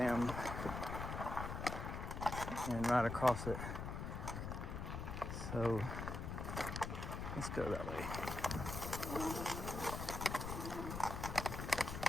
and ride across it. So let's go that way.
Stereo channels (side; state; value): left; noise; rumble, 4 dB below the sound